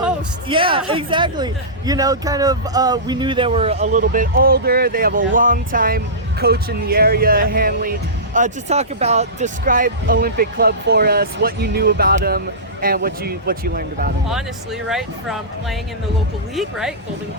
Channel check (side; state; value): both; normal; correlation -0.20